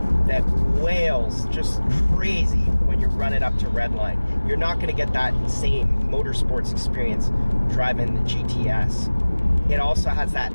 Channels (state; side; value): inverted; both; correlation -1.00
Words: that wails just crazy when you run it up to redline. You're not going to get that same motorsports experience driving the GTS. It also has that